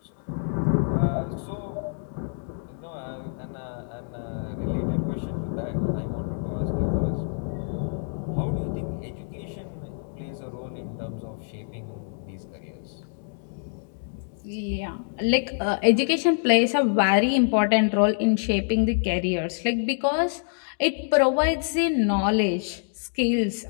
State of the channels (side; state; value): right; silent; digital silence